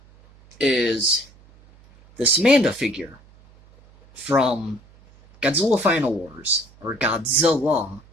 is this Manda figure from Godzilla Final Wars, or Godzilla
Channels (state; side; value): noise; right; hum, 27 dB below the sound